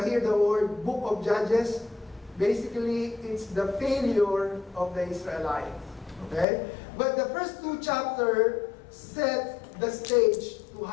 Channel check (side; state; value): right; drops out; at 6.5 s